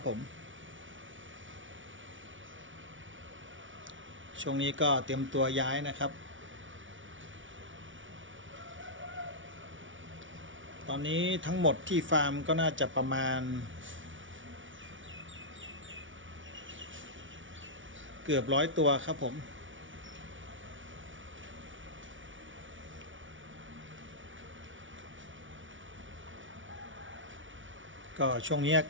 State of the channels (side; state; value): left; late; 0.56 ms